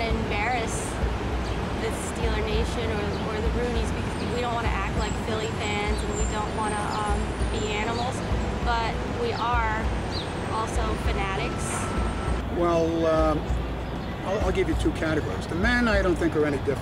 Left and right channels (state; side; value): identical; both; correlation 1.00